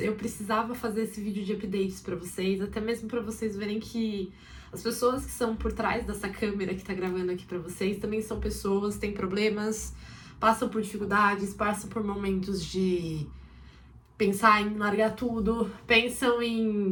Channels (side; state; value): both; identical; correlation 1.00